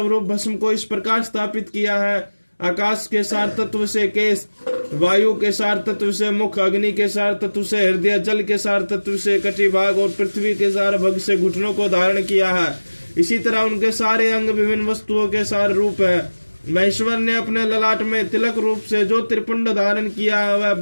भस्म को इस प्रकार स्थापित किया है। आकाश के सार तत्व से केश, वायु के सार तत्व से मुख, अग्नि के सार तत्व से हृदय, जल के सार तत्व से कटिभाग और पृथ्वी के सार भग से घुटनों को धारण किया है। इसी तरह उनके सारे अंग विभिन्न वस्तुओं के सार रूप है। महेश्वर ने अपने ललाट में तिलक रूप से जो त्रिपुंड धारण किया है वह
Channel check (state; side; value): inverted; both; correlation -1.00